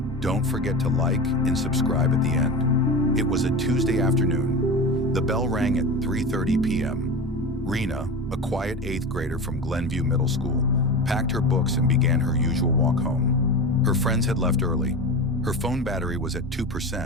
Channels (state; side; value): normal; both; correlation 0.27